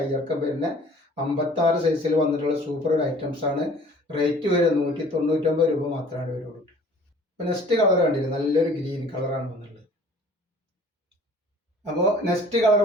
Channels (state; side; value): normal; both; correlation 0.51